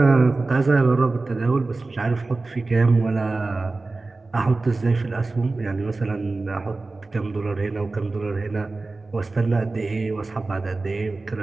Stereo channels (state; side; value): quieter; left; 3.5 dB